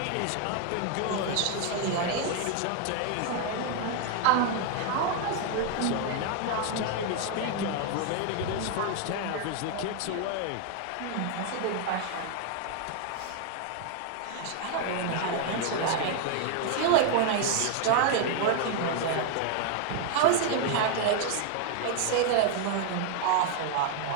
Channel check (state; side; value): different; both; correlation 0.00